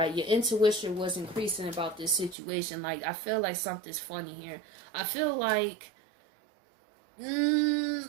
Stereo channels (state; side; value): drops out; left; at 2.4 s